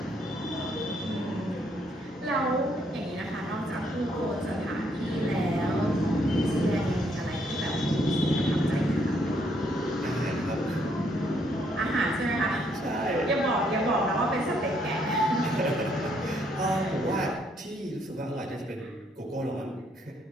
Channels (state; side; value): normal; both; correlation 0.71